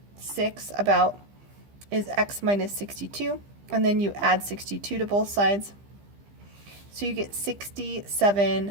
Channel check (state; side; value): late; left; 15 ms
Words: about is x minus 62, and then you add 62 to both sides. So you get